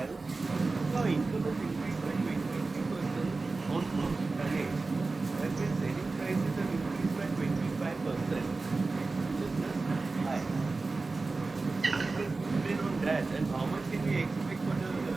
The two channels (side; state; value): left; quieter; 3.7 dB